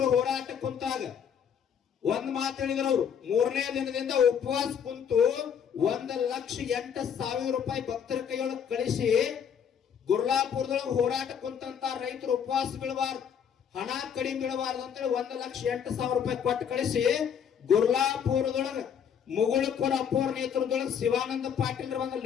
ಹೋರಾಟ ಕುಂತಾಗ ಒಂದ್ ಮಾತು ಹೇಳಿದ್ರು ಅವರು. 3ನೇ ದಿನದಿಂದ ಉಪವಾಸ ಕುಂತು 1,08,000 ರೂಪಾಯಿ ಭಕ್ತರ ಕೈಯೊಳಗೆ ಕಳಿಸಿ ಗುರ್ಲಾಪುರದೊಳಗೆ ಹೋರಾಟ ಕುಂತಂತ ರೈತರು ಉಪವಾಸ ಬೀಳಬಾರ್ದು, ಹಣ ಕಡಿಮೆ ಬೀಳಬಾರ್ದು ಅಂತೇಳಿ 1,08,000 ರೂಪಾಯಿ ಕೊಟ್ಟು ಕಳಿಸಿ ಗುರ್ಲಾಪುರದೊಳಗೆ ಮುಗುಳಕೊರ ಅಪ್ಪೋರ್ ನೇತೃತ್ವದೊಳಗೆ ಶಿವಾನಂದ ಪಾಟೀಲ್ ಒಂದು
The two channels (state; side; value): quieter; right; 7.8 dB